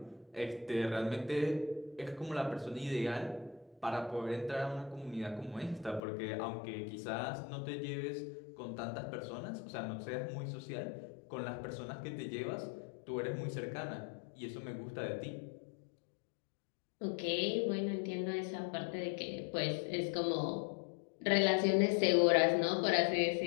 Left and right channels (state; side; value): drops out; right; at 6.0 s